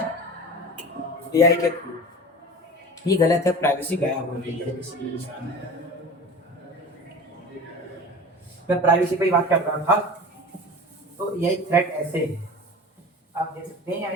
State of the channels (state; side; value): normal; both; correlation 0.36